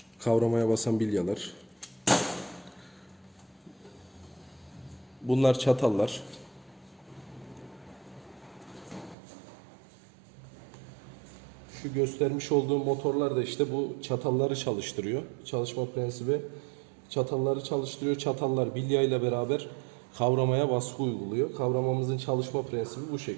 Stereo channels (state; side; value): drops out; left; at 9.2 s